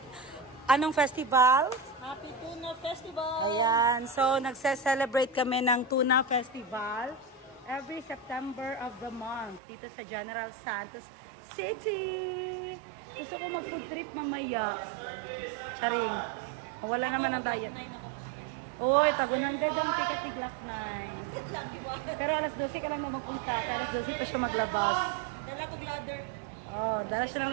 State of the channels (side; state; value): left; drops out; at 9.6 s